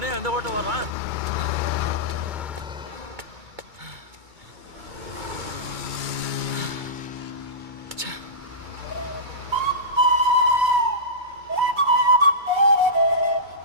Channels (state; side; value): late; left; 2.2 ms